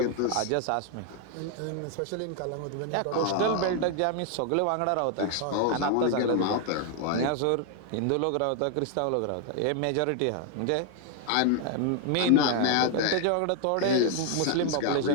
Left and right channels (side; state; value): both; different; correlation 0.00